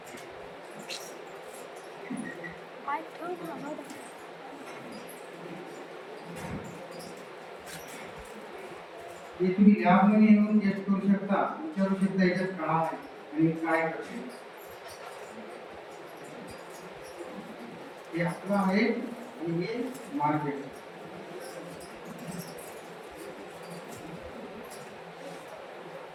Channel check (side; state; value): both; identical; correlation 1.00